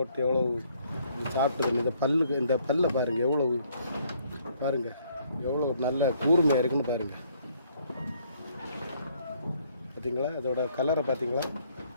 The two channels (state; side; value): inverted; both; correlation -0.66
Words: எவ்வளோ சாப்பிட்டுது. இந்த பல்லை பாருங்கள் எவ்வளோ பாருங்கள் எவ்வளோ நல்ல கூர்மையாக இருக்குன்னு பாருங்கள். பார்த்தீங்களா அதோட கலரை பார்த்தீங்களா